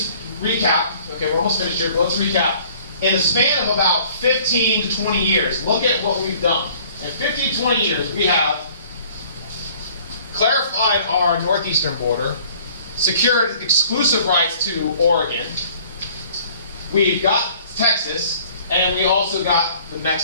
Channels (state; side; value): inverted; both; correlation -0.53